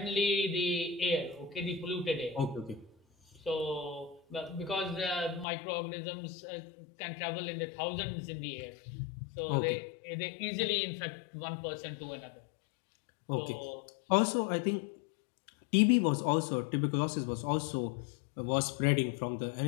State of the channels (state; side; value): drops out; right; at 5.5 s